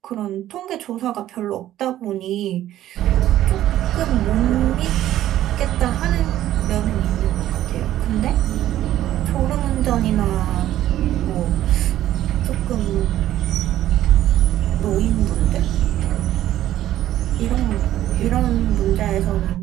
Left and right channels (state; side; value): quieter; left; 13.1 dB